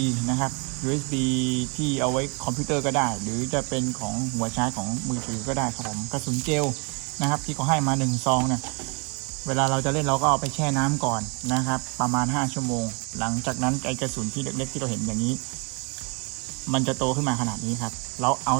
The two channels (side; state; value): left; quieter; 32.8 dB